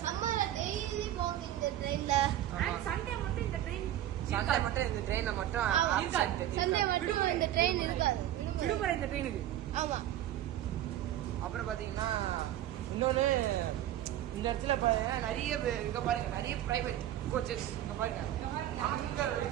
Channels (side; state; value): left; quieter; 12.6 dB